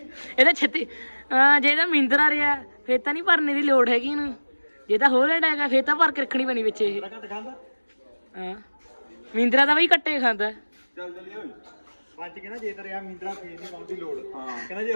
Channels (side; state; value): both; inverted; correlation -1.00